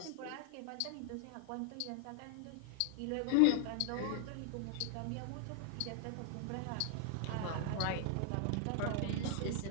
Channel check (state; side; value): different; both; correlation 0.00